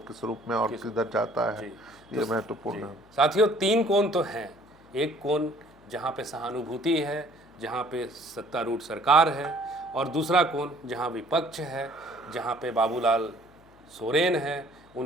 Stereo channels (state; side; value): noise; left; hum, 28 dB below the sound